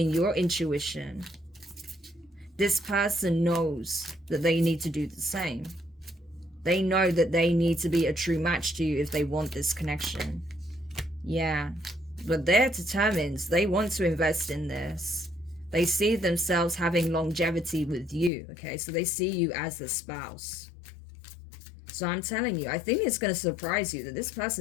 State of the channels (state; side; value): drops out; right; at 18.3 s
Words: your intuition, this person knows that they need to do the same. They know that they need to be a true match to you if they want this connection. Yeah, but they're determined. They want to invest in this. They see themselves having longevity with you, okay? So they see you as a spouse. So I'm telling you, I think it's going to surprise you that this